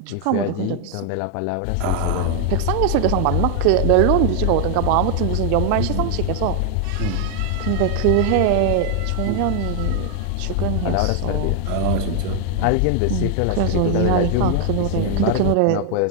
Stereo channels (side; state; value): both; different; correlation 0.00